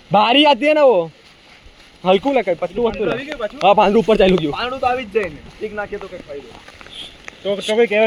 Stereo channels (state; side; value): identical; both; correlation 1.00